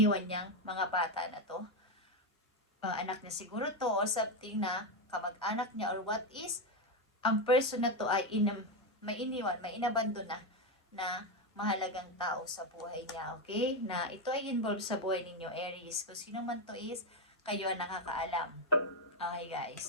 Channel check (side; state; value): both; normal; correlation 0.09